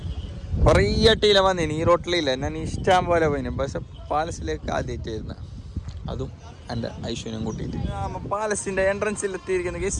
കുറേ അട്ടിയില വന്നിന്. ഈ റോട്ടിലില്ല, ഞാൻ ഇഷ്ടം പോലെ പോയിന്. പക്ഷെ പാലസിലേക്ക് ആദ്യമായിട്ട് വരുന്നത്, അതും എൻ്റെ ഐശ്വര്യം കൂട്ടിയിട്ട്. പാലസിൻ്റെ എൻട്രൻസിൽ എത്തിയിരിക്കുന്ന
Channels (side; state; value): both; identical; correlation 1.00